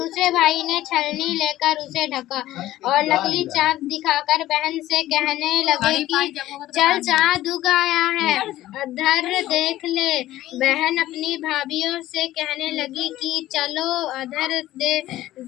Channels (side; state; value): right; quieter; 14.9 dB